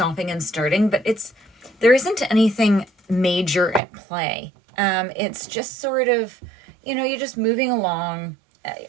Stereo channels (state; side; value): drops out; left; at 3.8 s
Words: and starting, but there isn't anything major at play. It's just sort of, you're just moving along.